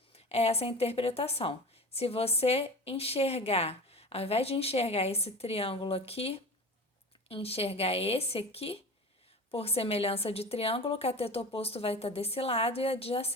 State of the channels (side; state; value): both; normal; correlation 0.33